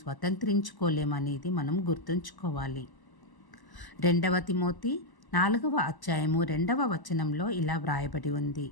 స్వతంత్రించుకోలేమనేది మనం గుర్తుంచుకోవాలి. 2వ తిమోతి 4వ అధ్యాయము 2వ వచనంలో ఇలా వ్రాయబడి ఉంది.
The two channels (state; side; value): late; right; 1.0 ms